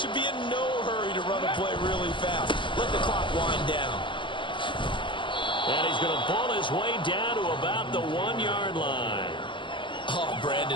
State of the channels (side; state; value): right; late; 0.24 ms